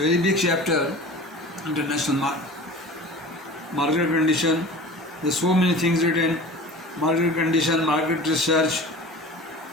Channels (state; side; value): normal; both; correlation 0.39